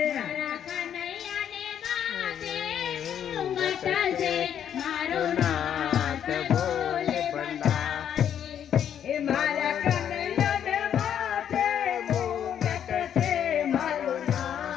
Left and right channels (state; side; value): quieter; right; 9.3 dB